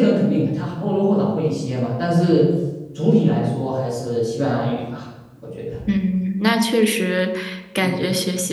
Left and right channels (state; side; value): identical; both; correlation 1.00